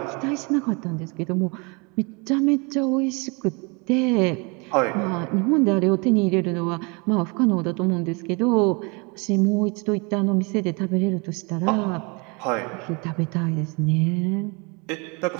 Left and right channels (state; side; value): quieter; left; 30.4 dB